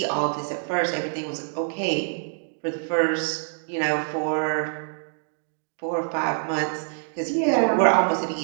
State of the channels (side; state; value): left; silent; 61 dB below the other